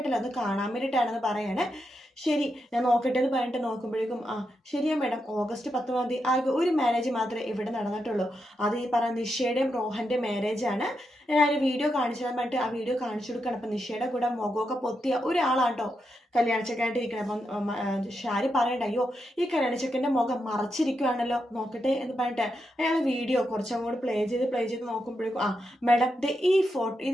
അത് കാണാൻ വേണ്ടിയിട്ടാണെന്ന് പറയാണ്. ശരി, ഞാൻ നോക്കട്ടെ എന്ന് പറഞ്ഞിട്ട് നോക്കുമ്പോഴേക്കും ശരിയാ മാഡം, ഓഗസ്റ്റ് 19 ആകെ ഒരു മാരേജ് മാത്രമേ ഇവിടെ നടന്നിട്ടുള്ളൂ. അത് ഈ പറഞ്ഞ നിഷയുടെയും രോഹൻ്റെ മാരേജാണ്. ഞാൻ വീഡിയോ കാണിച്ചു തരാൻ വേണ്ടിയിട്ട് ആ വീഡിയോ കാണിച്ചു കൊടുക്കണം. അപ്പം നിഷയുടെ കൂടെ മുഖമൊക്കെ പൊത്തിയ ഒരാളാട്ടോ കല്യാണച്ചക്കായിട്ട് ഇരിക്കണം. അപ്പം ഷാരി പറയണ്ട, അയ്യോ ഈ കല്യാണച്ചക്കൻ്റെ മുഖം മറച്ചിരിക്കുവാണല്ലോ, നോക്കട്ടെ എന്ന് പറഞ്ഞിട്ട് അയാൾ വീഡിയോ കുറച്ചങ്ങോട്ട് പ്ലേ ചെയ്ത് നോക്കുമ്പോഴേക്കും മാഡം ഈ ഫോട്ടോ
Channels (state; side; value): normal; both; correlation 0.84